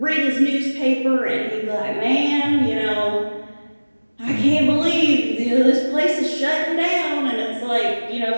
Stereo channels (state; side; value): inverted; both; correlation -1.00